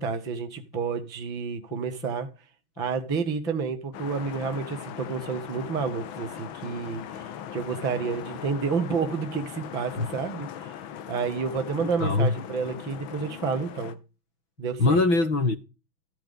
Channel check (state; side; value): late; right; 6.1 ms